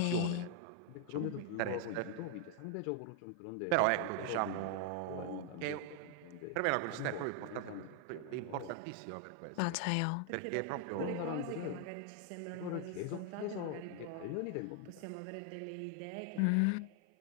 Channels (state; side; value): different; both; correlation 0.00